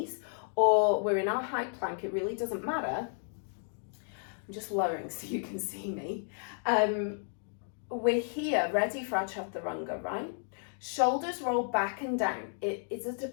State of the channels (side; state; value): right; silent; 56 dB below the other